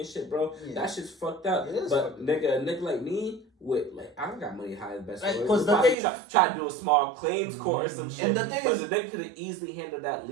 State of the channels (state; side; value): drops out; left; at 6.0 s